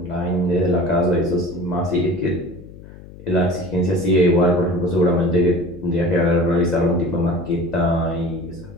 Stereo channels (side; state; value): left; noise; hum, 18 dB below the sound